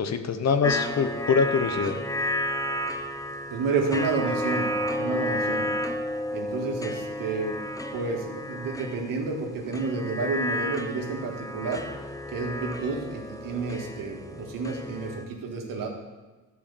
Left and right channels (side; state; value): both; normal; correlation 0.13